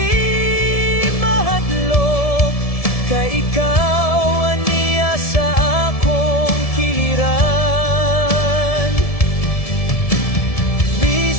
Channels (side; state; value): right; late; 1.7 ms